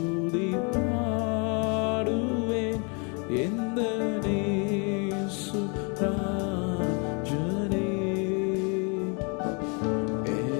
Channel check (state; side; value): quieter; right; 35.3 dB